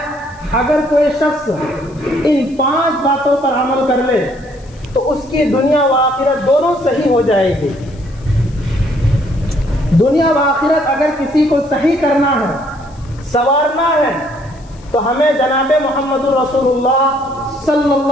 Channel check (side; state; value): left; noise; hiss, 28 dB below the sound